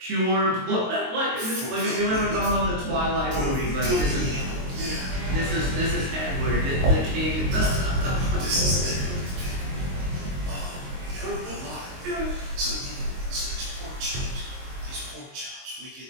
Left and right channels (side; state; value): left; late; 22 ms